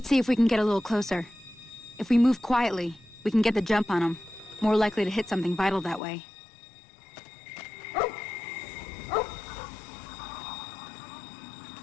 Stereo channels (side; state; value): right; drops out; at 6.0 s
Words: see if we can get a little closer. If we move quietly, we can get the jump on them. More likely to hit something vital that way.